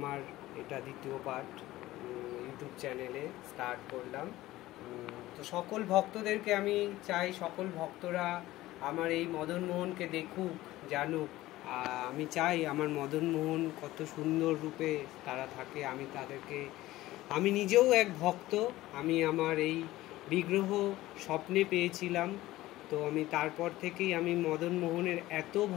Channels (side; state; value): right; quieter; 16.8 dB